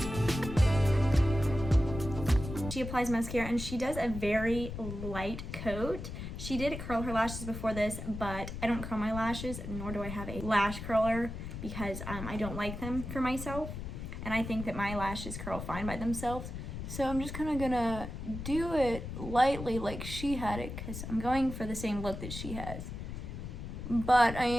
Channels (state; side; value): noise; left; rumble, 7 dB below the sound